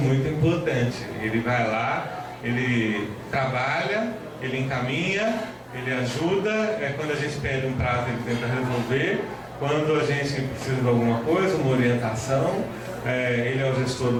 importante. Ele vai lá, ele trabalha, ele encaminha, ele ajuda, quando a gente pede um prazo ele tenta resolver, quando a gente precisa de alguma coisa, uma orientação, ele é o gestor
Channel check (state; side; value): identical; both; correlation 1.00